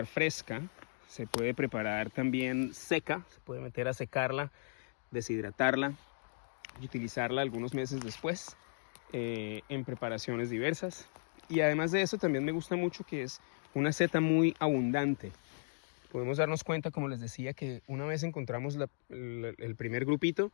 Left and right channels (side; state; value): right; silent; digital silence